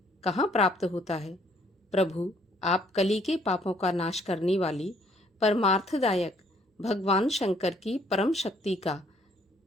कहाँ प्राप्त होता है? प्रभु, आप कली के पापों का नाश करने वाली परमार्थदायक भगवान शंकर की परम शक्ति का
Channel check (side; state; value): both; normal; correlation 0.64